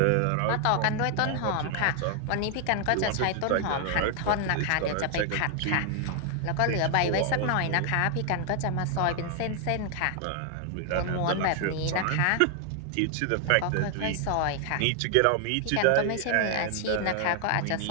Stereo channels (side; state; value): both; different; correlation 0.00